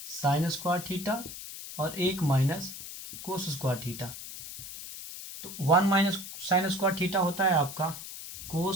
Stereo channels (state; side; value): noise; left; hiss, 11 dB below the sound